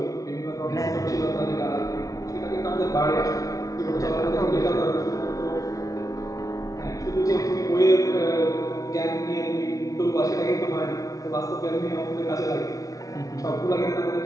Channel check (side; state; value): right; late; 0.17 ms